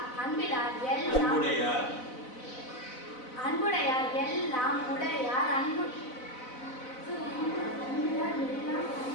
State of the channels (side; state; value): right; late; 4.0 ms